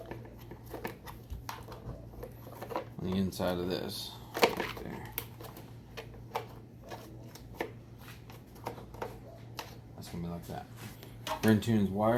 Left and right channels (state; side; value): identical; both; correlation 1.00